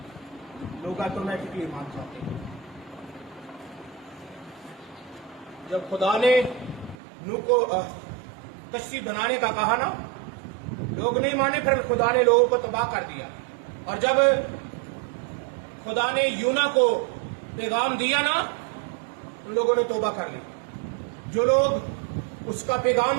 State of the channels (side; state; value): left; drops out; at 7.0 s